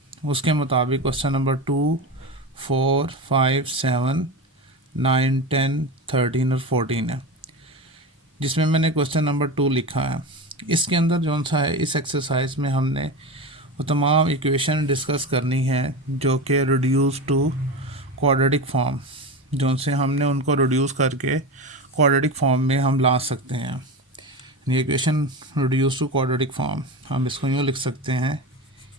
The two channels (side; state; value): both; normal; correlation 0.23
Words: उसके मुताबिक क्वेश्चन नंबर 2, 4, 5, 7, 9, 10, 13 और 14 है, जिसमें मैंने क्वेश्चन नंबर 2 लिखा है। इसके अंदर जौन सा है, इस एक्सरसाइज में हमने वो तमाम इक्वेशन डिस्कस करनी है जो कि रिड्यूस टू क्वाड्रेटिक फॉर्म, जौन से हमने उनको रिड्यूस करके क्वाड्रेटिक फॉर्म में हम ला सकते हैं। ये equation reduce to quadratic form हम इसको यूँ लिख सकते हैं,